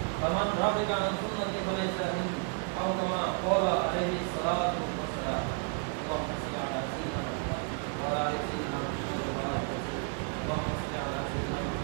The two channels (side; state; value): left; quieter; 39.1 dB